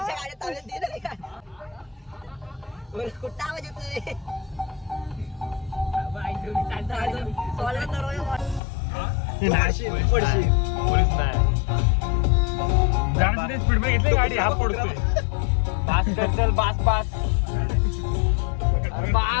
कुठं आवाज येतोय? स्पीड मध्ये घेतली गाडी, हा पडतोय. बास कर, चल बास बास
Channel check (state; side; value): drops out; right; at 8.6 s